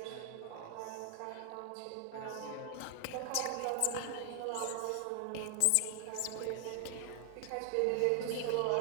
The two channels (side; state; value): both; different; correlation 0.00